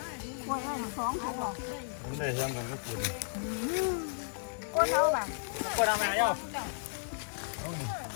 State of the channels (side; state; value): right; silent; digital silence